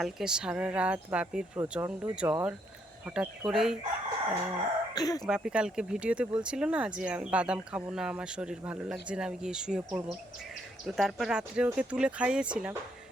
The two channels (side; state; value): both; normal; correlation 0.73